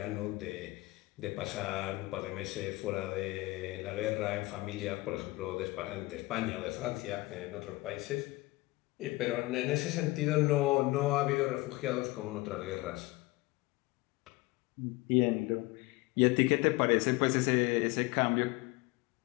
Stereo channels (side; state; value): right; quieter; 21.4 dB